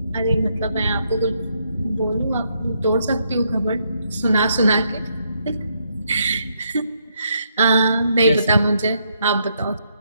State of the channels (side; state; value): both; inverted; correlation -0.76